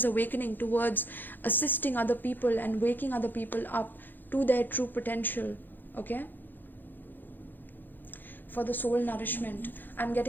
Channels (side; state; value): right; late; 0.090 ms